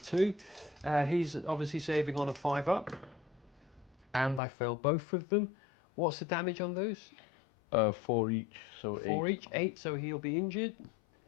He's obviously saving on a 5 up, and I failed both of them. What's the damage on those? 4 each, so 8. 4 each, 8, so he'll be injured,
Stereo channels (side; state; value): right; drops out; at 4.4 s